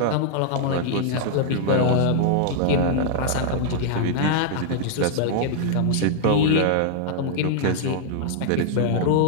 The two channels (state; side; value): different; both; correlation -0.01